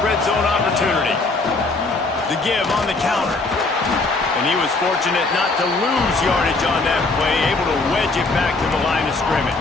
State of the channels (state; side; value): quieter; right; 3.5 dB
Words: red zone opportunity. The give on the counter. And he was fortunate not to lose yardage on that play, able to wedge it back to the line of